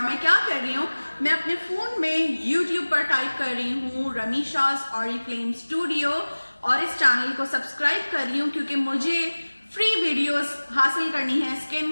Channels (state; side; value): inverted; both; correlation -1.00